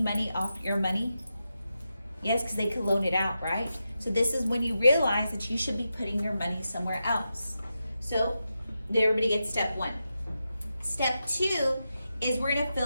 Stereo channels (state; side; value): inverted; both; correlation -0.88